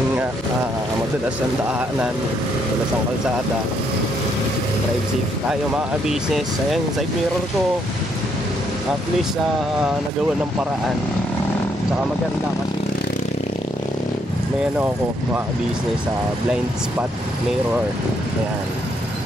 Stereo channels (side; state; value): both; normal; correlation 0.73